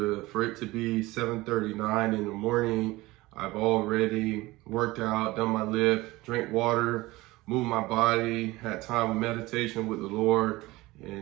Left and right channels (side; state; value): left; quieter; 20.0 dB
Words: it to be 7:39 in the morning. I've already worked out, done my lift, drank water, moved my body, had time of meditation with the Lord.